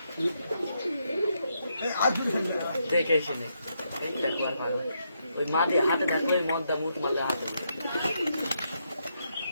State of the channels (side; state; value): both; inverted; correlation -0.79